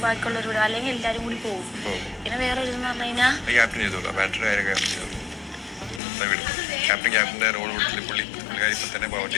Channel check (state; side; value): drops out; right; at 6.0 s